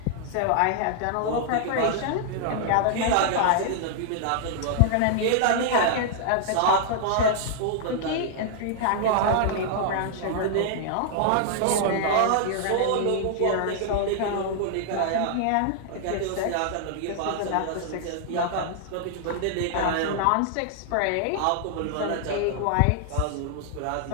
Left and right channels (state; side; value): different; both; correlation -0.01